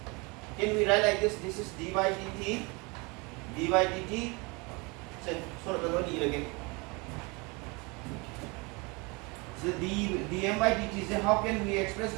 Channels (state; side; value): quieter; left; 28.2 dB